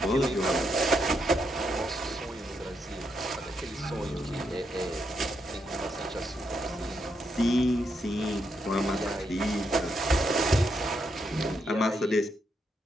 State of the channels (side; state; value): both; normal; correlation 0.80